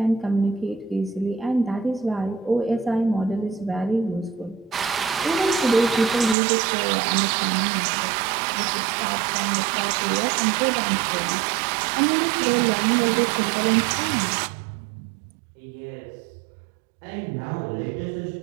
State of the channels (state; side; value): drops out; left; at 6.4 s